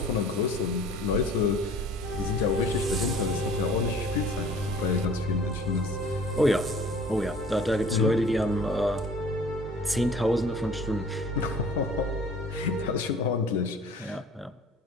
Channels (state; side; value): normal; both; correlation 0.48